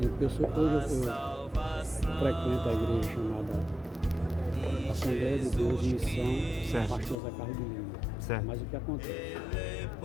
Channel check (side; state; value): right; drops out; at 7.2 s